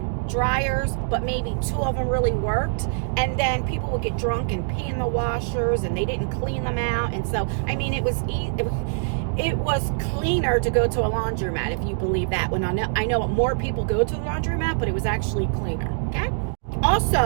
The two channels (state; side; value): silent; left; digital silence